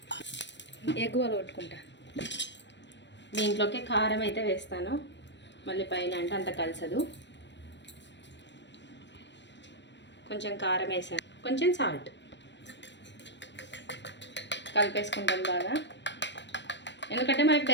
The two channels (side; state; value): right; late; 0.52 ms